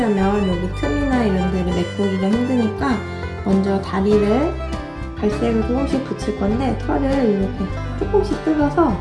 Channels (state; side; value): identical; both; correlation 1.00